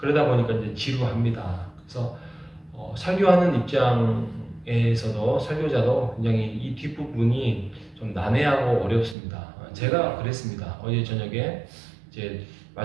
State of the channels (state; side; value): drops out; left; at 9.2 s